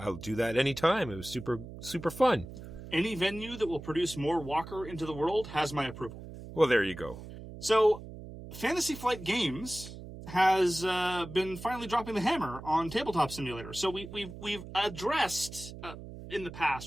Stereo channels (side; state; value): right; noise; hum, 13 dB below the sound